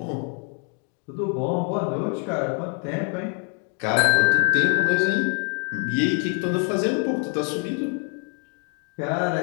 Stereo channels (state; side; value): quieter; right; 39.9 dB